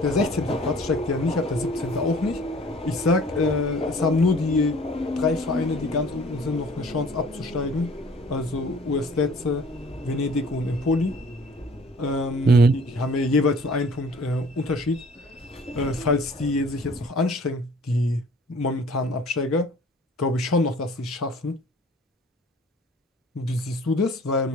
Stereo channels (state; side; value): normal; both; correlation 0.51